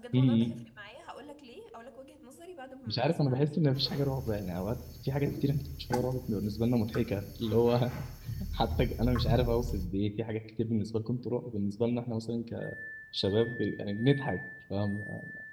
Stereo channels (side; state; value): both; identical; correlation 1.00